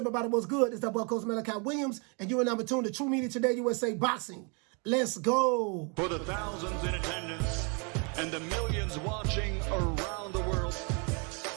What's good? It's that boy, Coach Malachi Williams, and you are number 2 in the True Media Today USA Boxing. Let's go. For the thousands in attendance and the millions watching around the world,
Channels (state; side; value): quieter; left; 34.5 dB